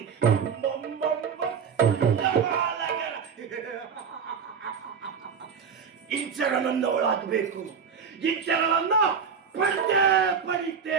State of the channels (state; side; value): quieter; left; 6.4 dB